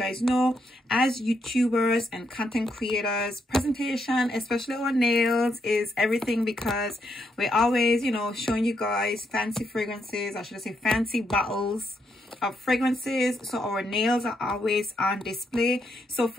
know, as YouTubers and content creators, presentation, especially our nails, is everything, because we're always, showing you guys fancy fragrances, or should I say fancy bottles of fragrances. So our nails are always on display. So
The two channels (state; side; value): normal; both; correlation 0.79